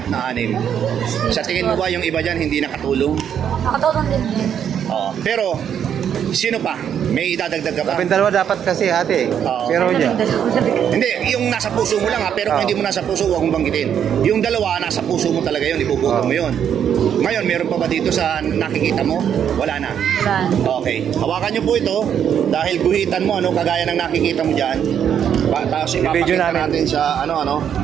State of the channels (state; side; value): quieter; left; 8.7 dB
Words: na 6. Sa tingin mo ba yung iba dyan hindi nakatulong? Nakatulong din din. Oo. Pero, sino pa? May idadagdag ka pa? Kami dalawa dapat kasi ate. Oo. Pero niya. Hindi, yung nasa puso mo lang ha, pero kung Oo. hindi mo nasa puso, huwag mong banggitin. Yung dalawa, nasa puso mo talaga yun, ipuputo mo yun. Ngayon, meron pa ba dito sa nakikita mo? Wala na. Wala. Okay. Hawakan niyo po ito dahil guhitan mo, ano, kagaya ng nakikita mo dyan. Tapos I-video ipapakita namin. natin sa